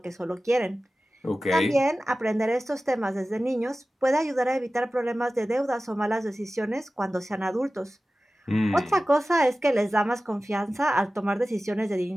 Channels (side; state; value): both; normal; correlation 0.96